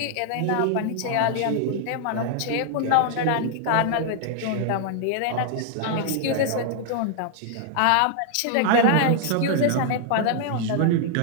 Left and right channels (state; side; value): different; both; correlation 0.00